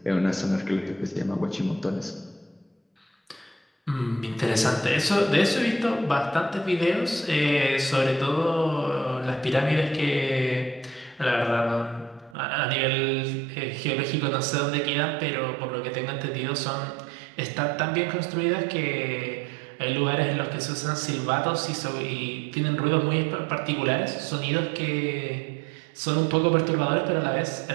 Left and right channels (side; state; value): left; drops out; at 12.4 s